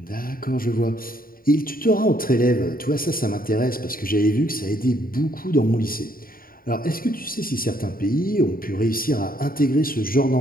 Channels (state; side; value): late; right; 0.42 ms